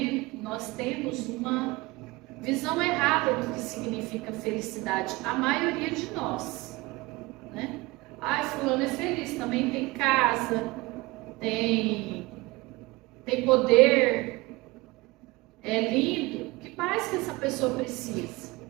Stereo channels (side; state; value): left; quieter; 22.1 dB